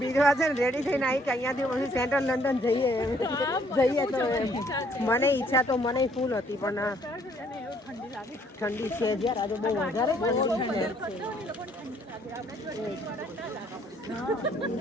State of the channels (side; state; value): both; normal; correlation 0.64